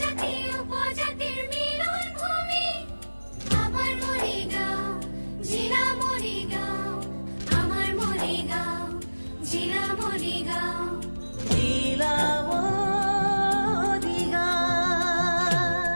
উপজাতিৰ মিলন ভূমি আমার মরিগাঁও, জিলা মরিগাঁও, আমার মরিগাঁও, জিলা মরিগাঁও, জিলা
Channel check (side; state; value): both; inverted; correlation -1.00